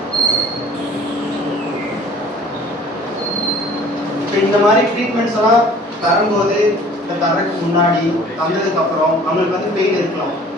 இந்த மாதிரி ட்ரீட்மெண்ட்ஸ் எல்லாம் தரும்போது, தரக்கு முன்னாடி தந்ததுக்கு அப்புறம் அவங்களுக்கு வந்து பெயின் இருக்கலாம்.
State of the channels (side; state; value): both; normal; correlation 0.50